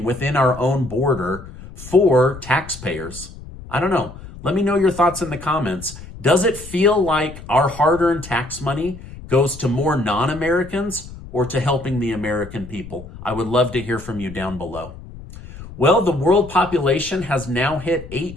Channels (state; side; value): noise; left; rumble, 15 dB below the sound